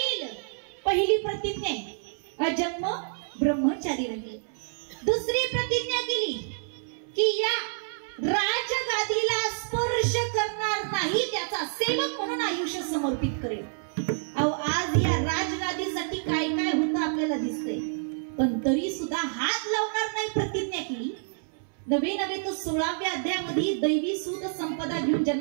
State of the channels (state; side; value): silent; left; 59 dB below the other